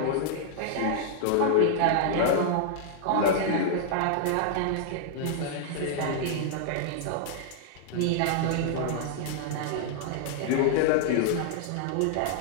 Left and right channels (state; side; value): different; both; correlation -0.01